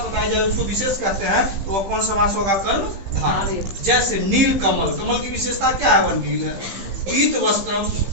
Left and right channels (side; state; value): left; late; 15 ms